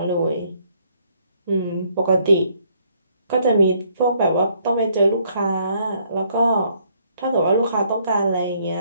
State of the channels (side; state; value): both; inverted; correlation -0.67